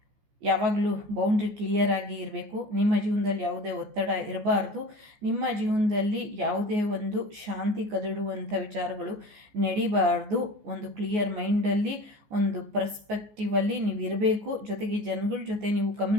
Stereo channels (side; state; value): left; late; 14 ms